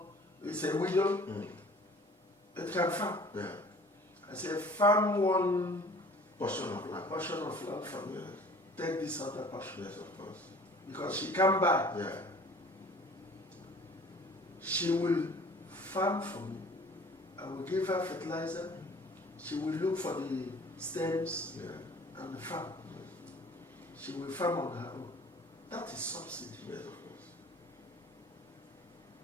it's a widow, it can farm. Yeah. I say, farm one Portion of land. From me. Take this other portion. Yes, of course. Because she can buy. Yeah. She will farm for me. I will give her fertilizer. She will look for the stems and the farm. Yes. She will farm on her own. That is subsidy. Yes, of course.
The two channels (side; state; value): both; normal; correlation 0.49